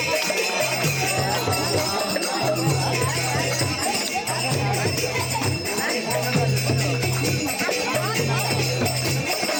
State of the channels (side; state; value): both; identical; correlation 1.00